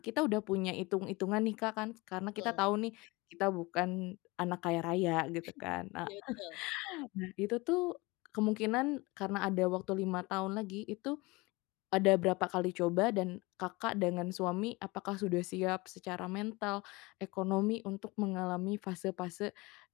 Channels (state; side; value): quieter; right; 23.8 dB